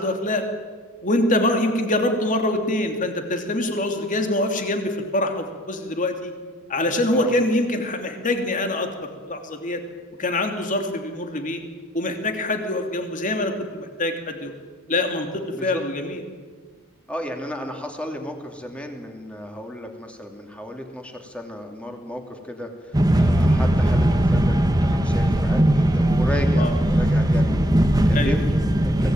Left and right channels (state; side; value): normal; both; correlation 0.67